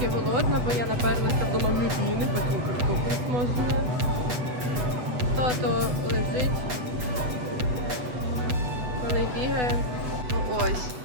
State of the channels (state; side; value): late; left; 8.1 ms